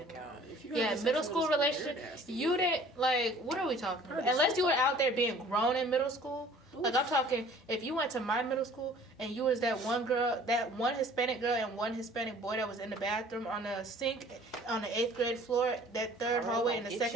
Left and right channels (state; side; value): normal; both; correlation 0.51